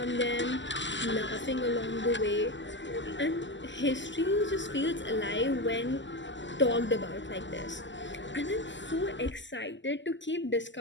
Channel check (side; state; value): right; late; 0.54 ms